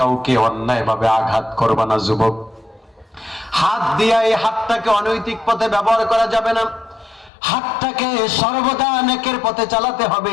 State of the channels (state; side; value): drops out; right; at 7.3 s